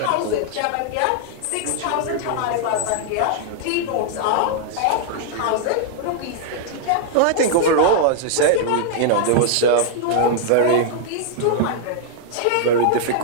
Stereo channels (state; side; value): different; both; correlation -0.01